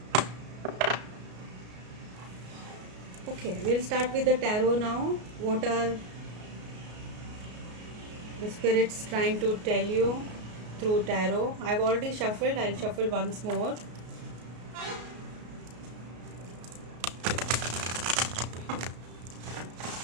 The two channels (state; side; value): late; left; 33 ms